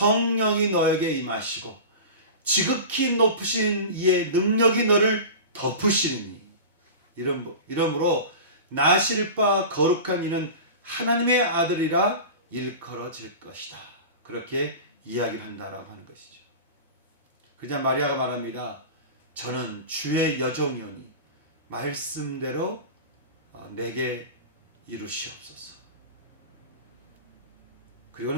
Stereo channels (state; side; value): inverted; both; correlation -0.31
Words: 너에게 임하시고 지극히 높으신 이의 능력이 너를 덮으시니 이러므로 나실 바 거룩한 이는 하나님의 아들이라 일컬어질 것이다. 그렇게 이야기를 한다라고 하는 것이죠. 그냥 마리아가 말합니다. 저는 주의 여종이오니 말씀대로 내게 이루시옵소서. 그리고